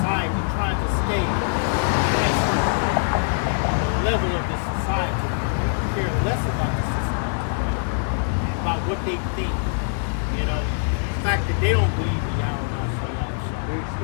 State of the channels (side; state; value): right; silent; digital silence